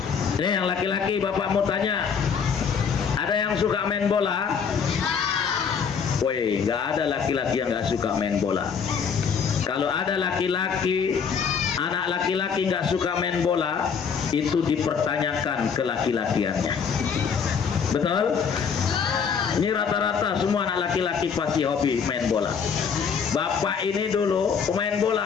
Ini yang laki-laki, bapak mau tanya, ada yang suka main bola? Woi, nggak ada laki-laki yang nggak suka main bola. Kalau ada laki-laki, anak laki-laki nggak suka main bola, itu dipertanyakan kelaki-lakiannya. Betul? Ini rata-rata semua anak laki-laki pasti hobi main bola. Bapak ini dulu pemain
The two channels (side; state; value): right; quieter; 6.4 dB